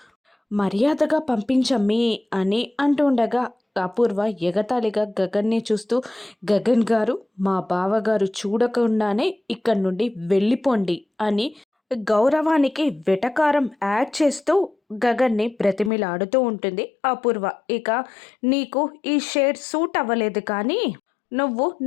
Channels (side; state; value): right; drops out; at 15.9 s